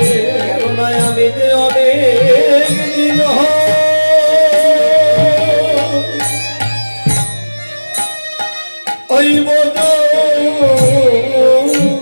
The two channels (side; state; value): both; inverted; correlation -1.00